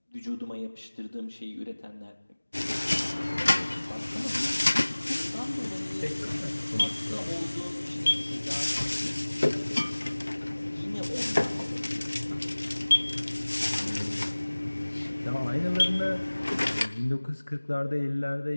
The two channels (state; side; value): inverted; both; correlation -1.00